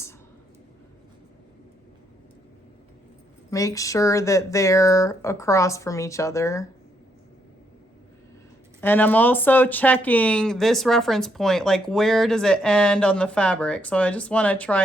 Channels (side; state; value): both; normal; correlation 0.75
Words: make sure that they're across from each other. And I'm also checking this reference point, like where does it end on the fabric? So I just want to